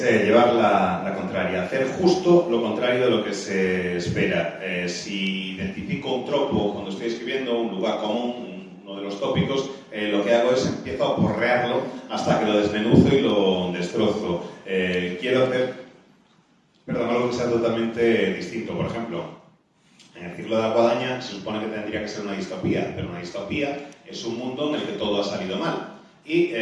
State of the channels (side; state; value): both; identical; correlation 1.00